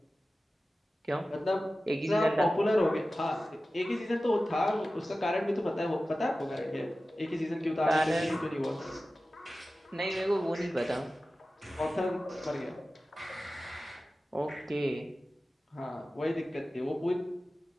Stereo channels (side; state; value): both; normal; correlation 0.95